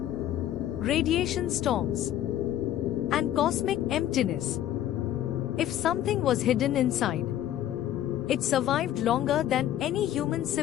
storms, and cosmic emptiness. If something was hidden inside, it survived longer than any human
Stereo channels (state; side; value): quieter; right; 12.0 dB